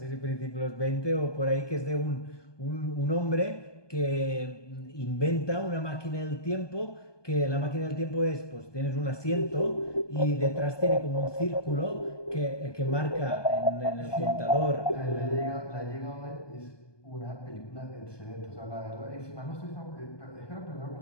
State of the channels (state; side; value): late; right; 1.2 ms